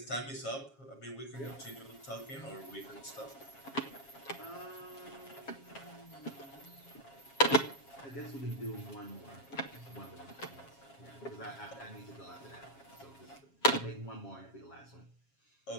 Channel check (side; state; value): right; late; 7.4 ms